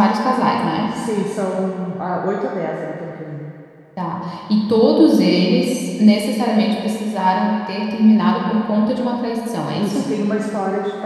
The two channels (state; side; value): identical; both; correlation 1.00